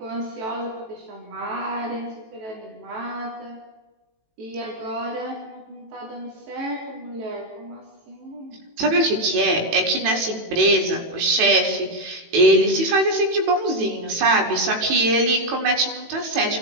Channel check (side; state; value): left; late; 18 ms